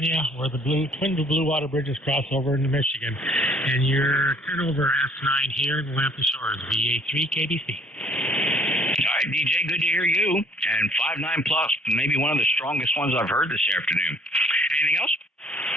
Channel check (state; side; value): normal; both; correlation 0.58